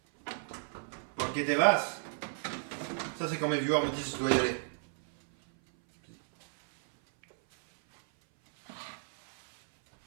Ok, t'es vaste. Ça, c'est quand mes viewers me disent que je dois y aller.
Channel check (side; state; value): left; silent; 56 dB below the other